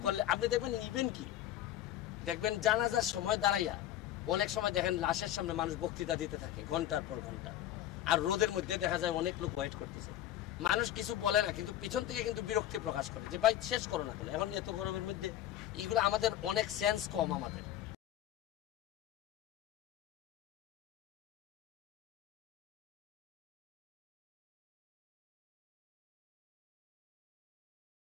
করলে আপনি দেখবেন ইভেন কি দেখবেন জানাজার সময় দাঁড়াইয়া অনেক সময় দেখেন লাশের সামনে মানুষ বক্তৃতা দিতে থাকে ঘন্টার পর ঘন্টা, আর রোদের মধ্যে দেখা যায় অনেক লোক ওয়েট করতেছে, মানুষ কিছু বলে না, কিন্তু পিছন থেকে কিন্তু বিরক্তি প্রকাশ করে যে ভাই শেষ করো না। এখন এত গরমের মধ্যে এগুলো আমাদের অনেক সেন্স কম আমাদের।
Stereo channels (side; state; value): right; quieter; 12.3 dB